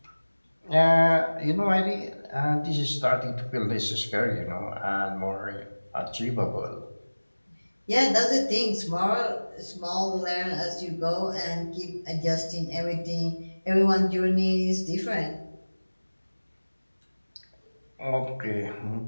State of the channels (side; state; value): both; inverted; correlation -1.00